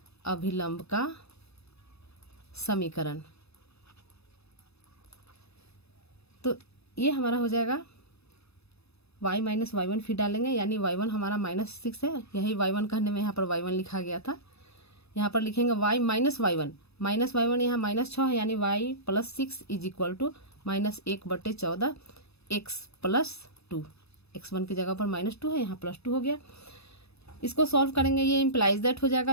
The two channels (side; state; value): right; late; 0.79 ms